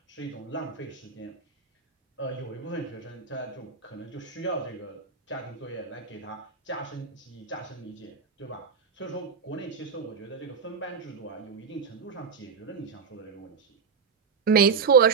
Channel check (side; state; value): left; quieter; 5.8 dB